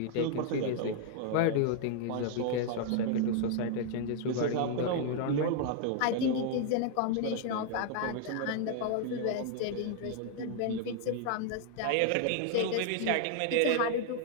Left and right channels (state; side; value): different; both; correlation 0.00